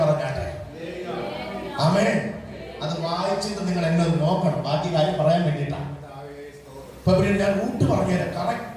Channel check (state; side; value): identical; both; correlation 1.00